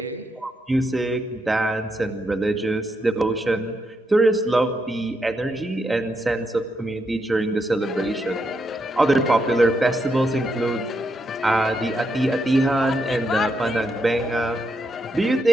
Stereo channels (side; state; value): both; normal; correlation 0.80